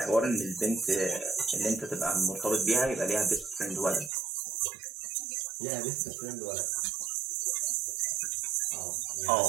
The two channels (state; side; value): drops out; left; at 4.1 s